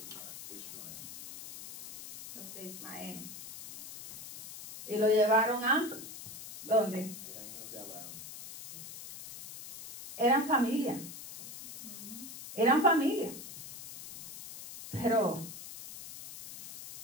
Los de Ismael. Y lo llevaron a ¿dónde? Eran hijos de Abraham. Eran familia. Eran familia. Pero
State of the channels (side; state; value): left; noise; hiss, 12 dB below the sound